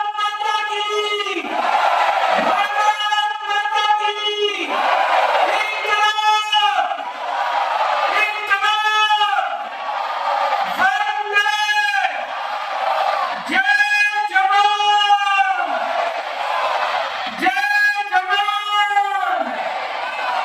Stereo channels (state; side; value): identical; both; correlation 1.00